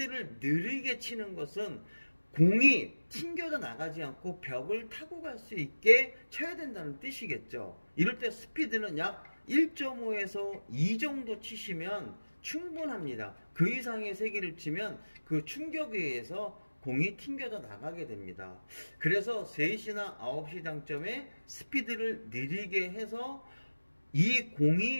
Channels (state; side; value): inverted; both; correlation -1.00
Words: 느리게 치는 것은 공이 튕겨져 나가지 않고 벽을 타고 갈 수 있게 쳐야 된다는 뜻이겠죠. 이럴 때 스피드는 약 1.5에서 2 정도 치시면 충분합니다. 그 이상의 세기를 치면 그 충격에 의해서 공이 튕겨져 나가게 됩니다. 그래서 3시나 9시 당점에 스피드를 느리게 해서 이